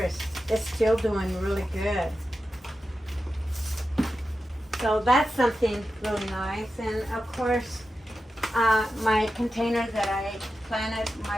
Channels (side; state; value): both; normal; correlation 0.92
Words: is still doing really good. So that's something really nice. And of course, my container that I planted